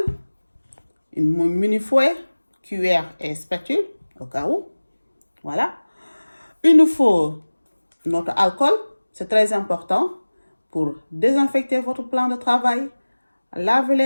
une mini fouet, cuillère et spatule, au cas où. Voilà. Il nous faut notre alcool, c'est très important pour désinfecter votre plan de travail, laver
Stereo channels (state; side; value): inverted; both; correlation -1.00